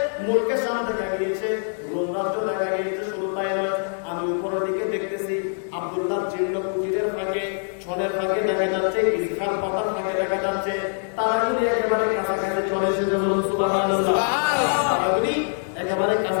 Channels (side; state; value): right; silent; digital silence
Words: মুলকের সামনে দেখা গিয়েছে, রোম রাজ্য দেখা গিয়েছে। শুধু তাই নয়, আমি উপরের দিকে দেখতেছি আব্দুল্লাহ জীর্ণ কুটিরের ফাঁকে, ছনের ফাঁকে দেখা যাচ্ছে, ইসখার পাতার ফাঁকে দেখা যাচ্ছে। তারাগুলি একেবারে কাছাকাছি চলে এসেছে। বলুন সুবহানাল্লাহ। তারাগুলি একেবারে